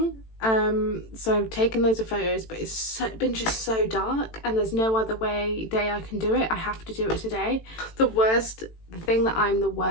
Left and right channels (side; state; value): right; late; 18 ms